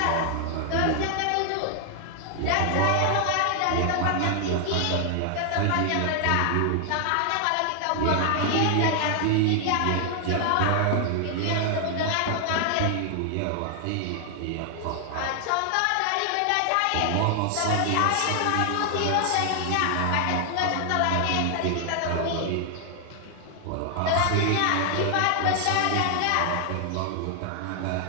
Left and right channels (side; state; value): both; different; correlation 0.00